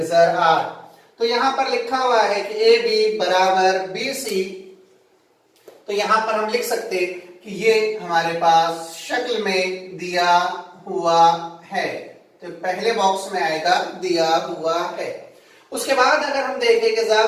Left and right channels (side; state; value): both; identical; correlation 1.00